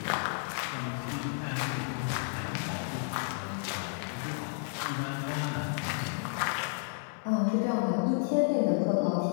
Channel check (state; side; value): silent; right; digital silence